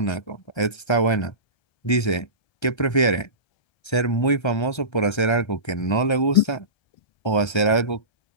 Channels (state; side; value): late; right; 1.3 ms